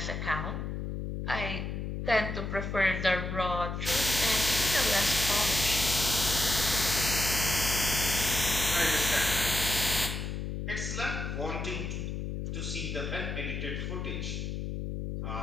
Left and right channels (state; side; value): noise; left; hum, 4 dB below the sound